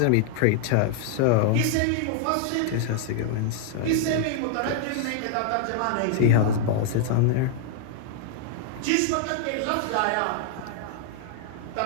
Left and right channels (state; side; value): different; both; correlation 0.00